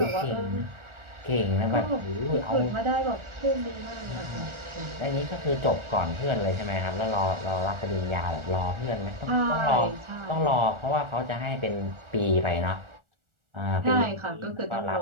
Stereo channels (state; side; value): late; left; 1.4 ms